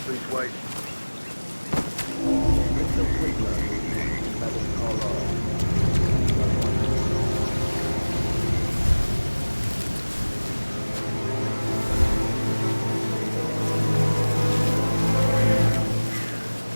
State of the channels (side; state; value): both; inverted; correlation -1.00